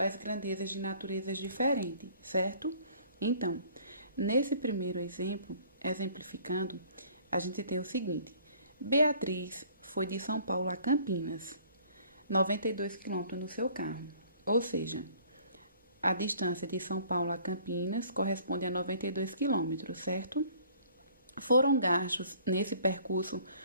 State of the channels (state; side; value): inverted; both; correlation -0.55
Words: grandezas de naturezas diferentes, certo? Então, nesse primeiro exemplo, exemplificando, a gente tem o seguinte: Beatriz foi de São Paulo a Campinas, 92 km no seu carro. Ou seja, a distância de São Paulo a Campinas corresponde a 92 km, certo? Foram gastos nesse percurso